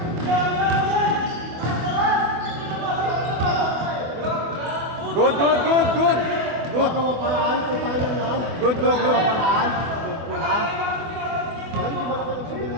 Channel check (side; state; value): left; late; 24 ms